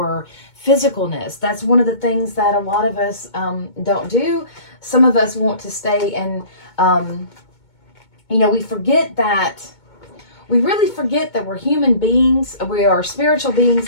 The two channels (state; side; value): late; right; 2.2 ms